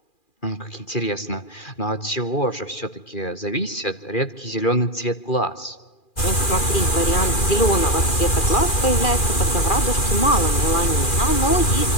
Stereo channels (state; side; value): late; right; 2.4 ms